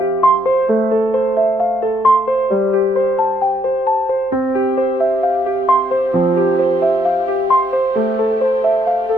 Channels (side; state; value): both; normal; correlation 0.72